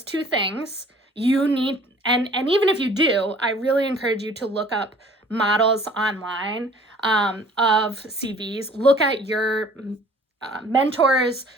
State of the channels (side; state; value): both; normal; correlation 0.52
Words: two things, you need, and even if you do, I really encourage you to look up models online of CVs. Look at your mentors,